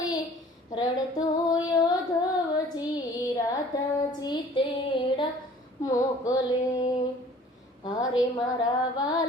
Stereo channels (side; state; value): both; normal; correlation 0.51